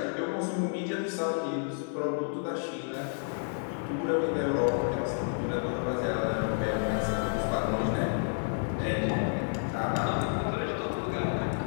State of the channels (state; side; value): silent; right; 58 dB below the other